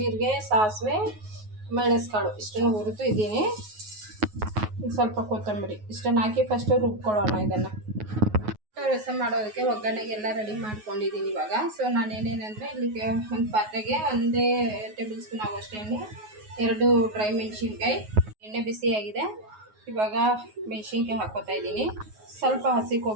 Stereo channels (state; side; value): late; left; 9.4 ms